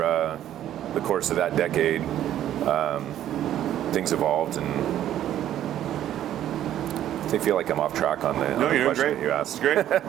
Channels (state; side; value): quieter; left; 11.7 dB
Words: the course of that decade, things evolved, and I feel like I'm off track on the question that you asked. Great.